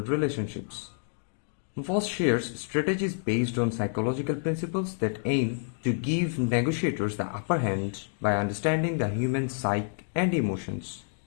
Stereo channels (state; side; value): silent; right; digital silence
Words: relationships. Voss shares strategies based on psychological principles that aim to give negotiators the upper hand by understanding the human psyche and emotions.